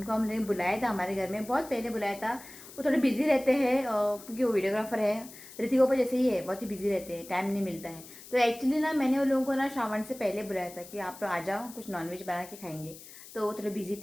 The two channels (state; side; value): noise; left; hiss, 17 dB below the sound